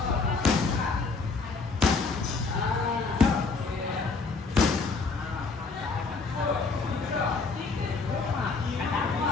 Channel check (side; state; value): right; quieter; 4.2 dB